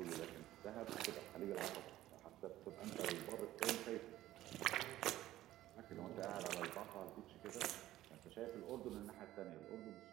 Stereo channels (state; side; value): quieter; left; 14.6 dB